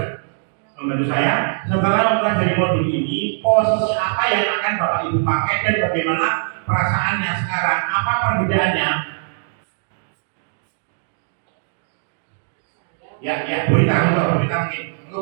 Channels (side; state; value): left; silent; digital silence